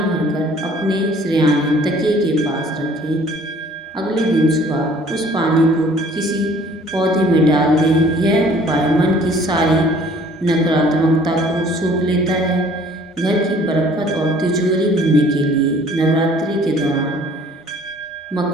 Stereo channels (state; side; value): normal; both; correlation 0.54